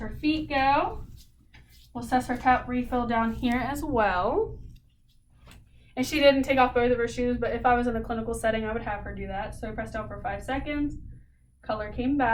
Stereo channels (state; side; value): identical; both; correlation 1.00